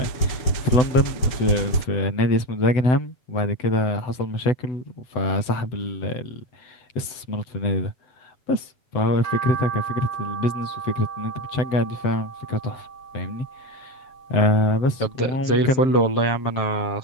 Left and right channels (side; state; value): right; late; 7.9 ms